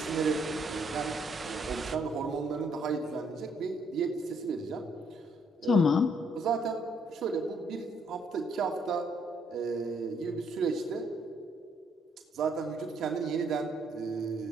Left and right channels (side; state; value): both; normal; correlation 0.69